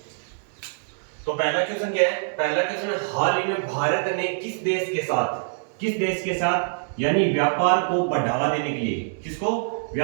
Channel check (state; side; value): silent; left; 62 dB below the other